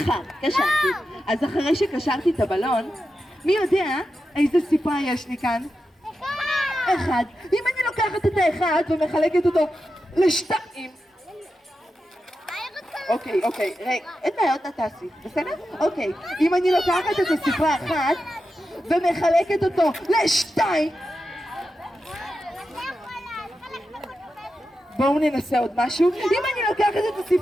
קשרתי. אז אחרי שקשרתי את הבלון, מי יודע איזה ספרה יש לי כאן? אחד. אם אני לוקחת את האחד ומחלקת אותו לשתיים. אוקיי, רגע, אין בעיות נתעשי, בסדר? אוקיי, אם אני לוקחת את הספרה אחת ומחלקת אותו לשתיים. בואו ננסה עוד משהו. אם אני לוקחת את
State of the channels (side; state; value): both; normal; correlation 0.90